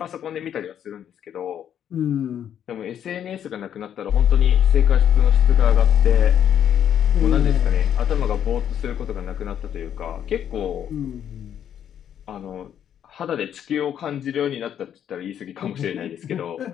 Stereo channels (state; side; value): quieter; right; 9.5 dB